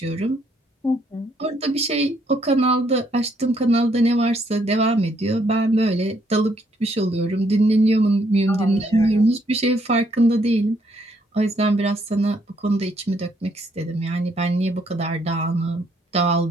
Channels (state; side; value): normal; both; correlation 0.70